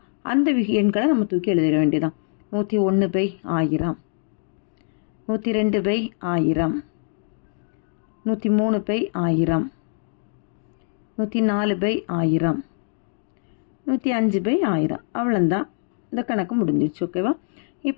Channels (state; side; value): silent; right; digital silence